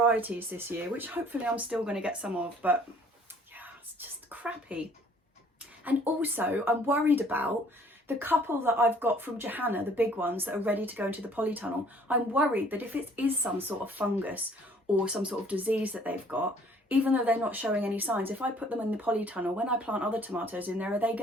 this year, which hopefully I'm still going to get some of, but yeah, it's just crappy. And also I'm worried about the couple that I've got from Johanna, the big ones that are ready to go into the polytunnel. I'm worried that if it is some sort of fungus or some sort of disease that they've got, even though they're not showing any signs, if I put them in the polytunnel, when I plant other tomatoes in there, are they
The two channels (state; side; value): normal; both; correlation 0.57